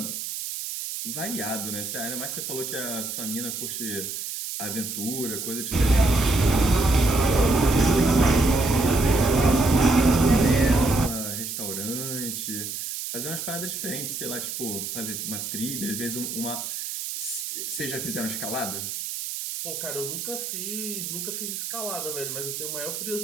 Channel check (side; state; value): right; noise; hiss, 5 dB below the sound